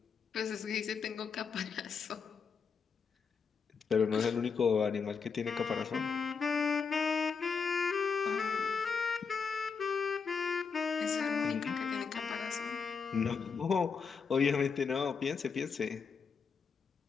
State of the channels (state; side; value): quieter; right; 5.7 dB